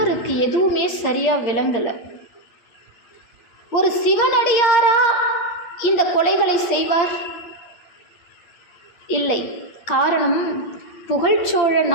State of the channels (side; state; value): right; late; 8.6 ms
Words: எதுவுமே சரியா விளங்கலை. ஒரு சிவனடியாரா இந்த கொலைகளை செய்வார்? இல்லை. காரணம், புகழ்ச்சோழ